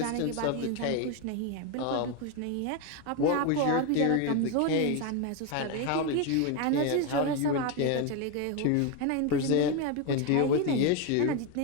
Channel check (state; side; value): different; both; correlation 0.02